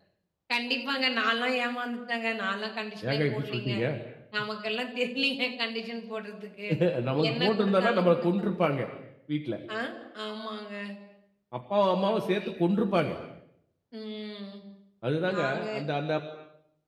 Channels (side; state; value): both; identical; correlation 1.00